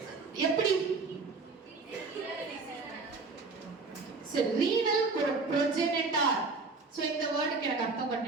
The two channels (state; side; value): quieter; left; 4.1 dB